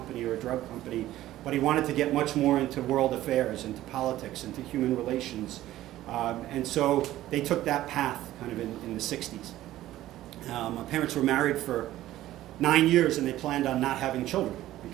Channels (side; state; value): left; quieter; 14.6 dB